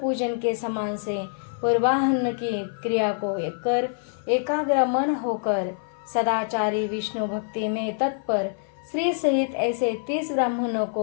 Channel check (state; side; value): silent; right; 55 dB below the other